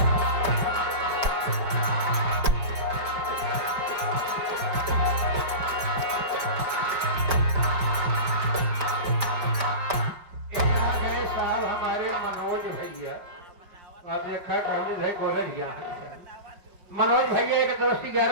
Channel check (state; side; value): late; left; 5.0 ms